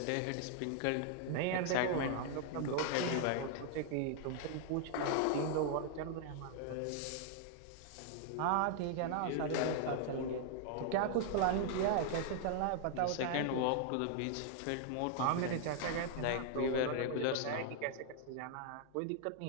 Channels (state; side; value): different; both; correlation 0.00